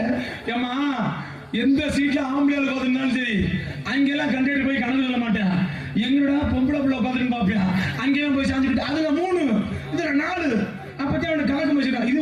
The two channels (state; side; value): identical; both; correlation 1.00